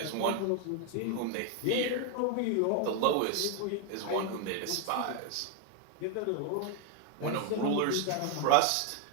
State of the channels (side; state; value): both; different; correlation 0.01